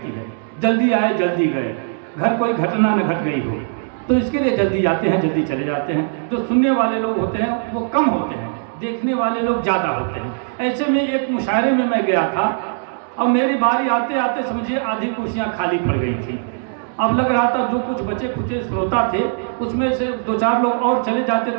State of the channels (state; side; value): silent; left; digital silence